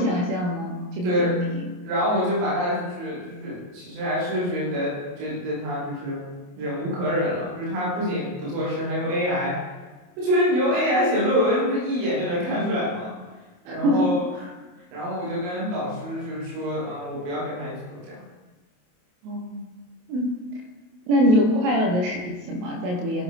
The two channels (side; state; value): left; late; 28 ms